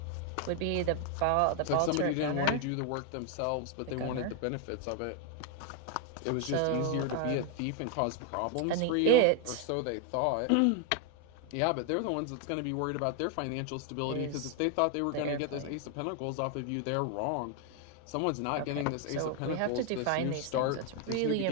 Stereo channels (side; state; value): both; different; correlation 0.00